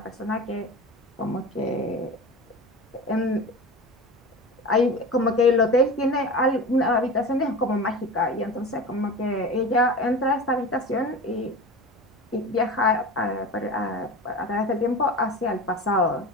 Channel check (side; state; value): both; normal; correlation 0.31